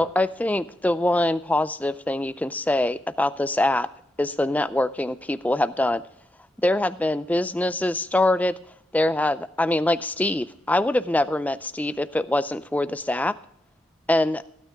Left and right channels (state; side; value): normal; both; correlation 0.85